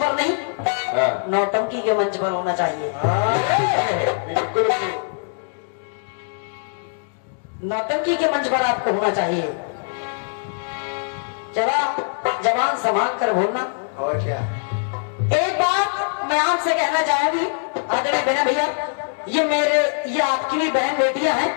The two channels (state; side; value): silent; right; digital silence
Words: नहीं, नौटंकी के मंच पर होना चाहिए। नौटंकी के मंच पर आपको होना चाहिए। जरा जवान संभाल कर बोलना। और क्या। एक बात मैं आपसे कहना चाहूंगी आदरणीय बहन भैया, ये आपकी भी बहन बेटियां हैं